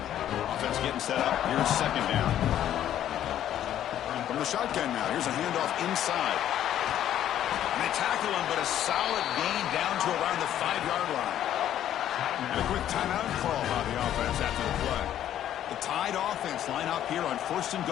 Offense getting set up. Here's second down. From the shotgun now, here's a handoff inside. And they tackle him, but a solid gain down to around the 5-yard line. And a quick timeout call by the offense after the play. The Tide offense line up here on 1st and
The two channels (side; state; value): right; quieter; 11.3 dB